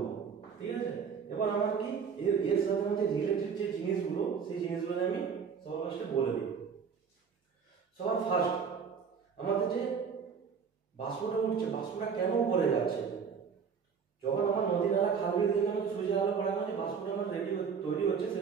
ঠিক আছে। এবার আমার কি এর সাথে মধ্যে রিলেটেড যে জিনিসগুলো, সেই জিনিসগুলো আমি সবার ফার্স্টে বলে দিই। সবার ফার্স্ট আমাদের যে বাষ্পটা উঠছে, বাষ্পটা কেন উপরে যাচ্ছে? যখন আমার নদী নালা খাল বিল থেকে আমাকে সূর্যের আলো পড়ানো যে বাষ্পটা আমার তৈরি হচ্ছে,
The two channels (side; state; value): left; quieter; 6.4 dB